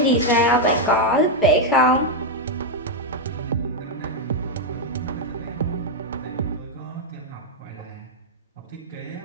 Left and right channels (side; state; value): both; normal; correlation 0.01